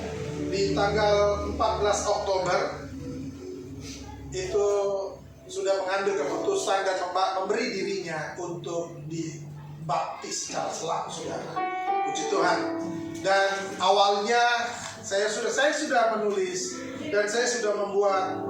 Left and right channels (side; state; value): both; identical; correlation 1.00